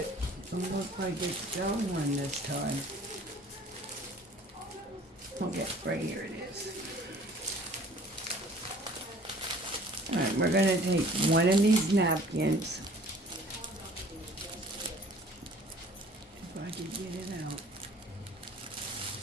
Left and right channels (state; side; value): normal; both; correlation 0.51